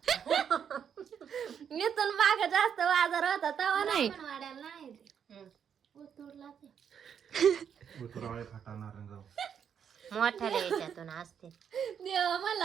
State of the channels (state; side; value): quieter; left; 7.9 dB